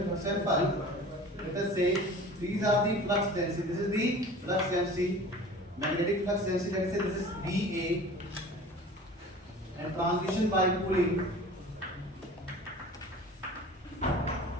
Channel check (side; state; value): both; normal; correlation 0.41